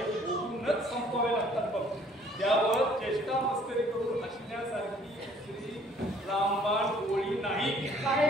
भोगूनच संपवावे लागतात बघ. त्यावर चेष्टा मस्करी करून हसण्यासारखी दुसरी रामबाण गोळी नाही.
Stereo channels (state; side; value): normal; both; correlation 0.58